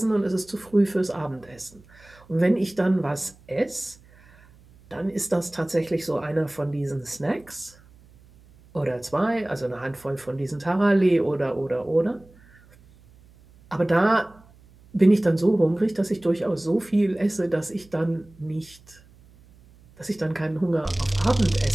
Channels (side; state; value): right; noise; hum, 26 dB below the sound